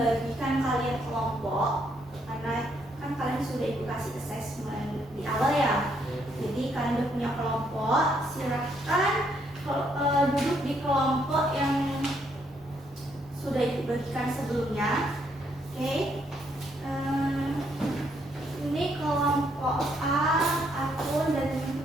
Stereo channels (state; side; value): normal; both; correlation 0.72